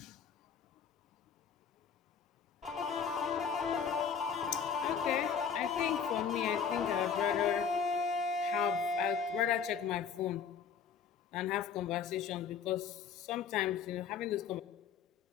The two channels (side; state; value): right; quieter; 6.8 dB